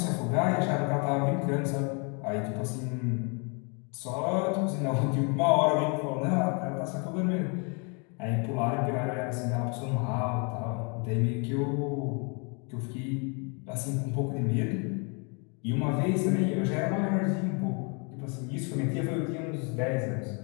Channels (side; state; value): right; quieter; 35.2 dB